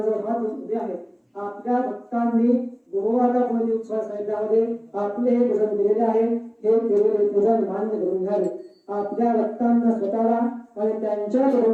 हात उभे आहेत आपल्या भक्तांनी गुरुवारा मध्ये उत्सव साहित्यामध्ये आपले हे भजन केलेले आहे हे केलेले पूजन मान्य करून घ्यावे आपल्या भक्तांना स्वतःला आणि त्यांच्या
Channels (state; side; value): identical; both; correlation 1.00